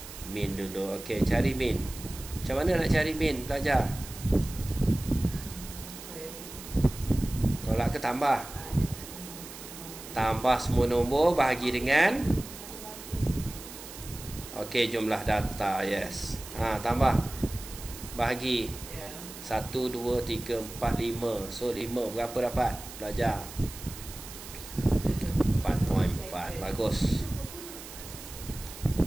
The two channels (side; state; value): right; noise; hiss, 13 dB below the sound